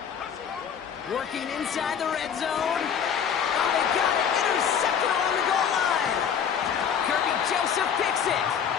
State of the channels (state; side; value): quieter; right; 7.8 dB